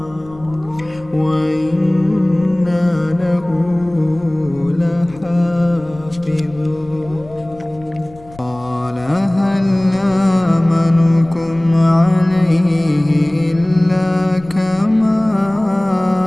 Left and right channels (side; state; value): left; noise; rumble, 22 dB below the sound